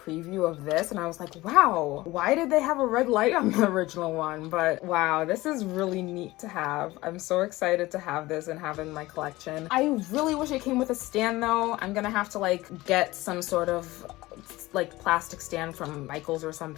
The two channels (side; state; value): right; quieter; 19.0 dB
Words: of this, and I was like, wow, why did they have a red light on the original one? But wow, this is really neat to have. I'm so excited to have this and have it in my collection. I really wish it came with a stand though. I'm gonna have to like get some sort of like plastic stand from Michael's or